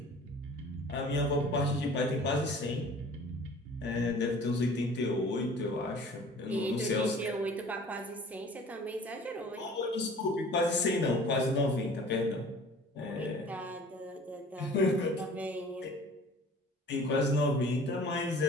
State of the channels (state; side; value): normal; both; correlation 0.47